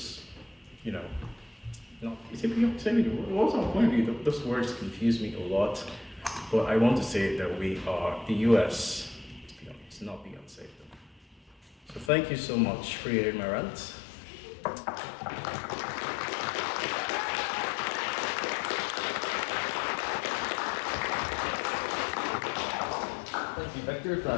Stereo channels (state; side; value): drops out; right; at 12.1 s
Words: what's our point of view? Those words confuse me a lot, but I want to say that the US is not Beyonce. So thank you so much for hearing my rant. Thank you, Victor, for